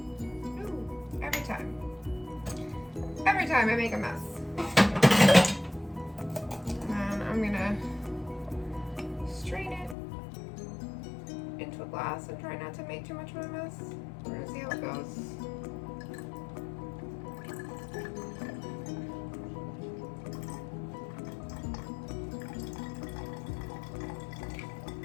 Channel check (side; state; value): right; drops out; at 10.0 s